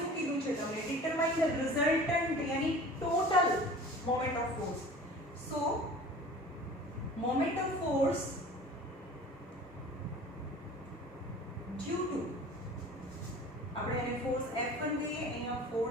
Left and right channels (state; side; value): normal; both; correlation 0.42